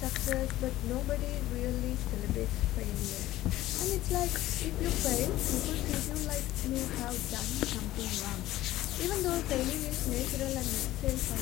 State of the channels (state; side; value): quieter; right; 15.5 dB